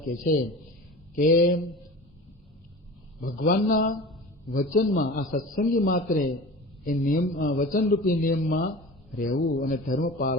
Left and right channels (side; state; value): both; normal; correlation 0.36